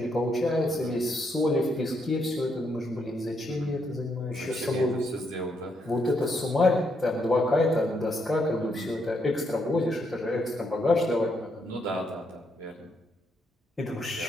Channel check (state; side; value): normal; both; correlation 0.77